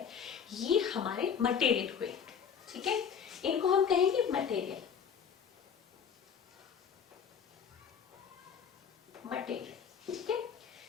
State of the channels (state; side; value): quieter; right; 7.3 dB